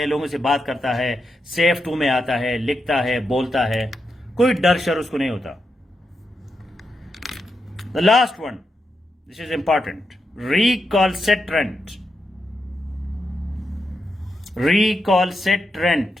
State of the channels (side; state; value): both; normal; correlation 0.85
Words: लोगों से बात करता है, सेफ टू में आता है, लिखता है, बोलता है, कोई डर शर उसको नहीं होता। The last one, this is important. Recalcitrant. Recalcitrant.